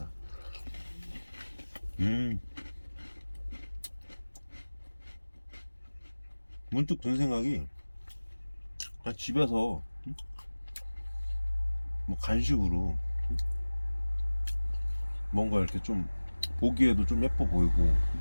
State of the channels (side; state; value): both; inverted; correlation -1.00